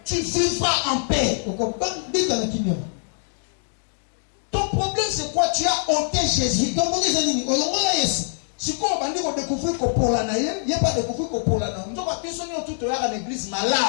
Tu vivras en paix. Ton problème c'est quoi? Tu as ôté Jésus. Si on va découvrir que pour la naïe, il n'y a pas découvrir que pour la naïe. On va penser tout à l'église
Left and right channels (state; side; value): silent; right; digital silence